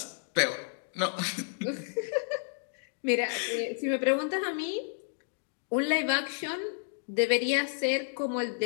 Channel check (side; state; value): right; silent; digital silence